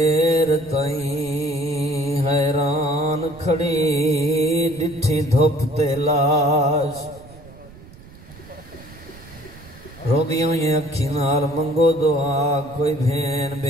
تائیں حیران کھڑی ڈٹھی دھوپ تے لاش روگیوں یہ اکھی نال منگو دعا کوئی بھین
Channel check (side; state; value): right; noise; rumble, 20 dB below the sound